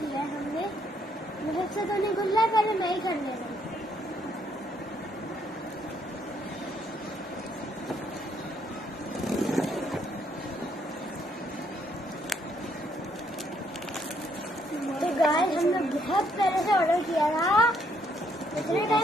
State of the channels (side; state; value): both; normal; correlation 0.70